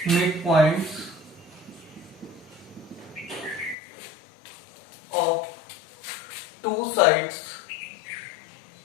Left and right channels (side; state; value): right; drops out; at 3.8 s